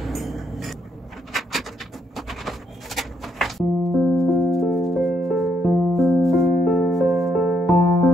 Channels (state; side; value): normal; both; correlation 0.74